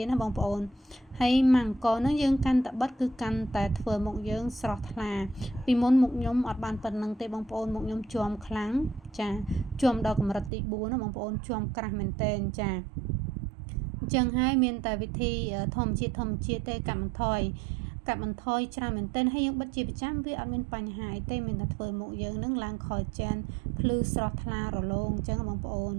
តណាបងប្អូនហើយម៉ាំងកនោះយើងកាន់តែបិទគឺកាន់តែធ្វើមុខយើងស្រស់ថ្លាពីមុនមុខខ្ញុំអត់បានប៉ុណ្្នឹងទេបងប្អូនមុខខ្ញុំជាំខ្លាំងចាជាំដល់កម្រិតទី4ណាបងប្អូនជាំក្រាស់មែនតែនចាអញ្ចឹងហើយមានតែវិធីធម្មជាតិទេកាត់បន្ថយច្រើនមែនទែនហើយយើងបិទជាប្រចាំវាអត់មានបញ្ហាអីទេមានតែធ្វើមុខយើងនឹងឡើងខលចានភ្លឺស្រស់ថ្លារលោងអញ្ចឹងបងប្អូន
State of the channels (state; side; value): drops out; left; at 10.5 s